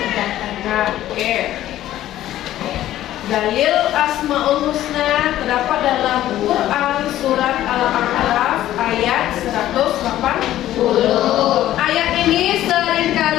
Nah, oke. Dalil Asmaul Husna terdapat dalam Quran surat Al-A'raf ayat 180. Ayat ini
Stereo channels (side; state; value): right; quieter; 13.4 dB